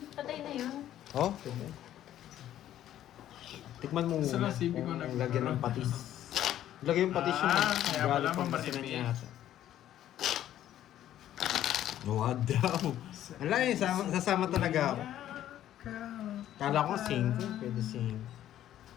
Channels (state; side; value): quieter; right; 12.1 dB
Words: patay na yun. Oh, tikman mo Sa muna. nasibi ko Kung lagyan ng patis. Lagyan yung patis yung Kaya pala galing pang mamarimi. basinan niya ata. Wag daw. Wala eh, sasama talaga ako. Kala ko 5, pwede 5.